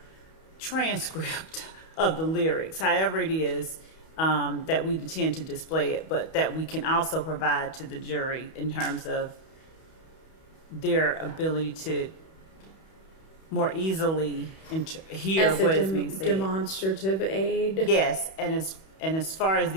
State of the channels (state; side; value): late; right; 31 ms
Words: transcript of the lyrics, however it is that we intend to display it, but that we can also provide to the jury in terms of their ability to more easily hear As what a is being said. demonstrative aid. Yes, and as far as